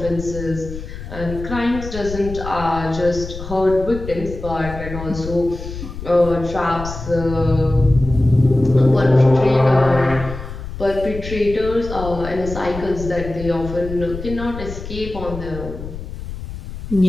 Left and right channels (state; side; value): noise; left; rumble, 10 dB below the sound